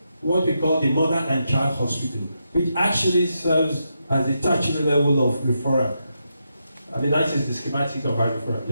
what we call the Mother and Child Hospital, which actually serves as the tertiary level of referral. I mean, that is the schematic of our referral.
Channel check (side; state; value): both; inverted; correlation -0.84